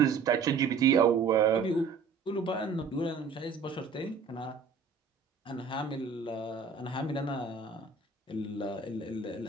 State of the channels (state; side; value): quieter; left; 5.3 dB